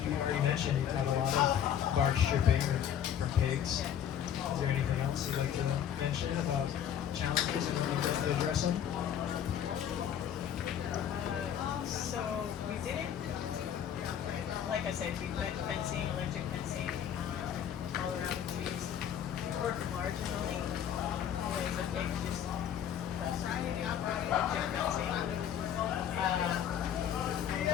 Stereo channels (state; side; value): quieter; right; 9.5 dB